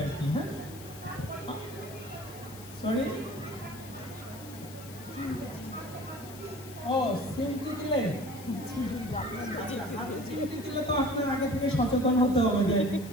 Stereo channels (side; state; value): left; noise; hiss, 17 dB below the sound